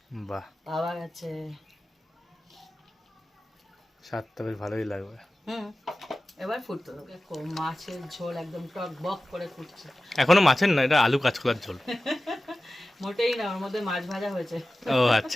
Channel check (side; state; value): both; normal; correlation 0.95